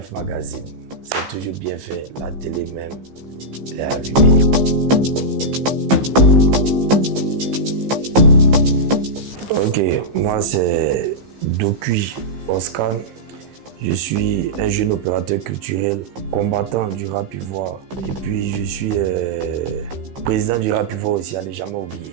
Magazine. C'est toujours bien fait, la télé même, elle est allumée. Ok, moi c'est Dokui Oscar. Je suis un jeune opérateur culturel, combattant du rap ivoire. Et puis je suis président du rap ivoire aussi, à ne jamais oublier.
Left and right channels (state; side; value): late; left; 15 ms